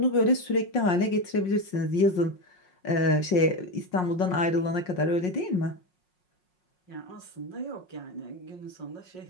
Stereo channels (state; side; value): late; right; 5.5 ms